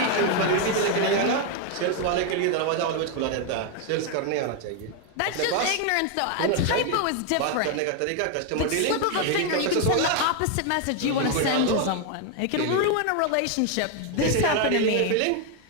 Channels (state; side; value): different; both; correlation 0.01